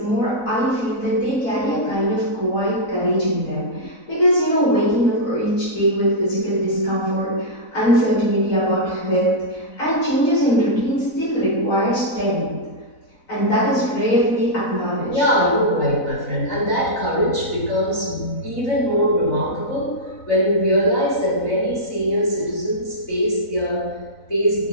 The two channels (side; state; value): right; late; 4.0 ms